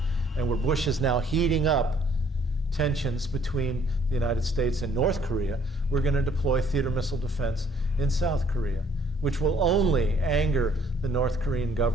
and where Bush is now heating up tensions between the United States and North Korea, we're going to deploy theater missile defense in South Korea, which will only anger the North Korean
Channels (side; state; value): both; normal; correlation 0.62